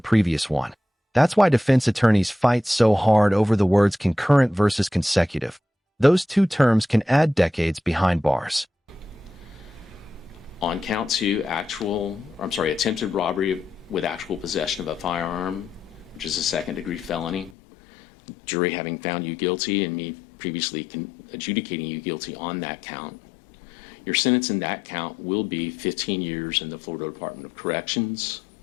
one. That's why defense attorneys fight so hard over the words concurrent versus consecutive. Those two terms can add decades behind bars. On count 2, attempted robbery with actual possession of a firearm, which is a second-degree felony. Jury having found you guilty and me previously adjudicating you guilty on that count. Your sentence in that count will be 15 years in the Florida Department of Corrections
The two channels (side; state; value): right; drops out; at 17.6 s